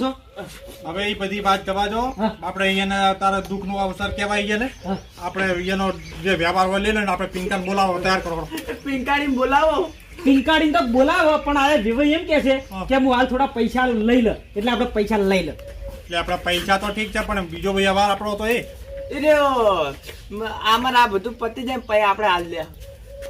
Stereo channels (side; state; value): both; identical; correlation 1.00